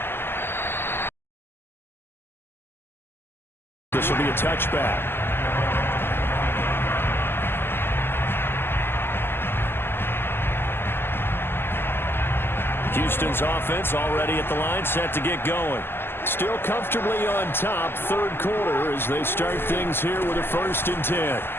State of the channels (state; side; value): late; right; 0.11 ms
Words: This will be a touchback. Houston's offense already at the line, set to get going. Still comfortably on top, third quarter, as they start things here with a 1st and 10.